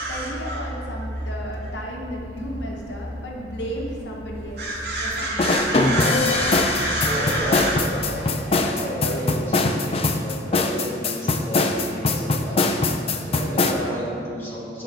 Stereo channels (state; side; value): normal; both; correlation 0.41